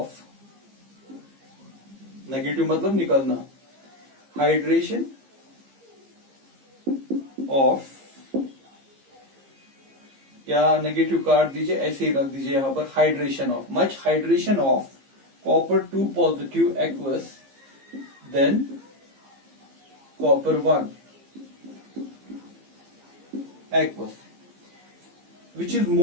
negative मतलब निकलना, हाइड्रेशन ऑफ, या नेगेटिव काट दीजिए, ऐसे ही रख दीजिए यहां पर, hydration of, much hydration of copper 2 positive aqueous than copper 1 aqueous, which is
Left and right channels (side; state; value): left; late; 15 ms